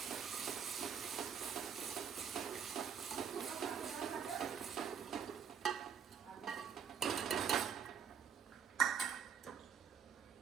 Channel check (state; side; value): quieter; left; 7.6 dB